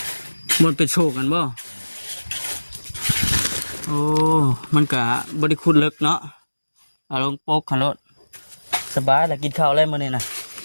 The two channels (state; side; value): inverted; both; correlation -1.00